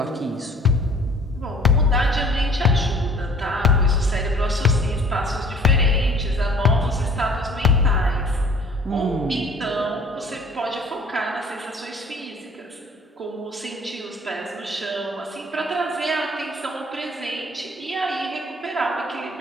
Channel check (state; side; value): normal; both; correlation 0.51